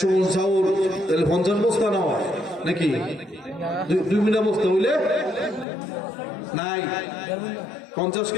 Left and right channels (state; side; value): drops out; right; at 5.7 s